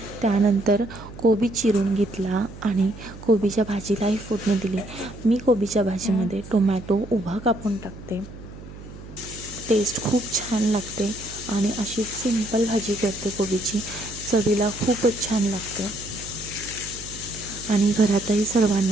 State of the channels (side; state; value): right; noise; hum, 15 dB below the sound